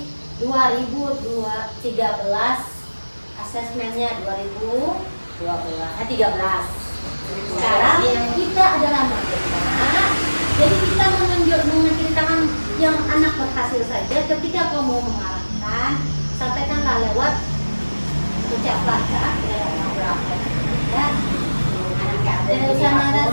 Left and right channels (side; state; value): both; inverted; correlation -1.00